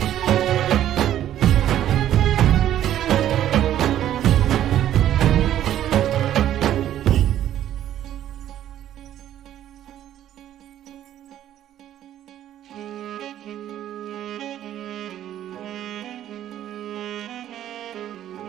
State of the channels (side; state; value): left; quieter; 11.7 dB